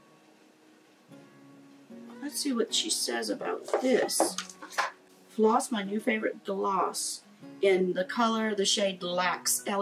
Let's see what she says about this. FLOSS, my new favorite gloss, in the color, the shade LAX,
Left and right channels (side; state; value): both; identical; correlation 1.00